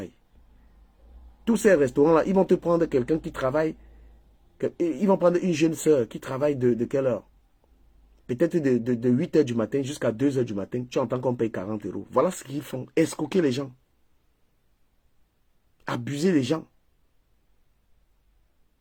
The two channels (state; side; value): identical; both; correlation 1.00